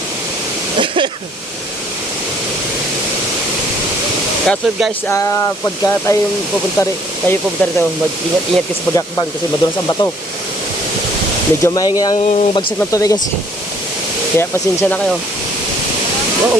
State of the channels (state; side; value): normal; both; correlation 0.61